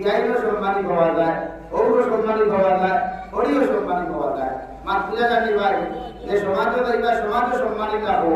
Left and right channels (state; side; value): identical; both; correlation 1.00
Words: সম্মানী পাওয়া যায় ওরও সম্মানী পাওয়া যায় ওরিও সম্মানী পাওয়া যায় মা পূজা জানি ভাই যে সমাজও যাইবা সমাজও সম্মানিত হবো